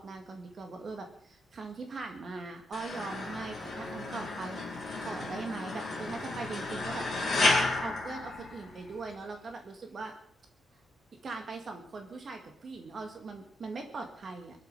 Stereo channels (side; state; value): both; normal; correlation 0.80